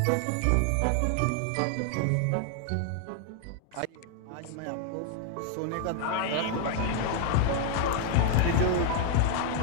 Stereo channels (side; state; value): both; different; correlation 0.00